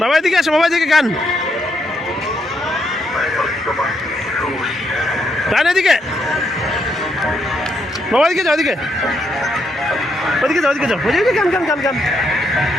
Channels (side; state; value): both; normal; correlation 0.77